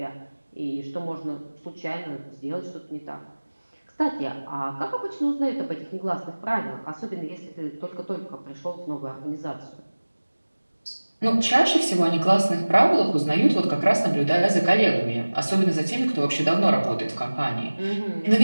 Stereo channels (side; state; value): both; inverted; correlation -1.00